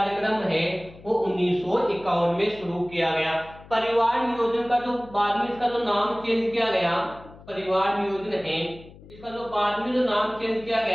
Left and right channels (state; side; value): noise; left; hum, 20 dB below the sound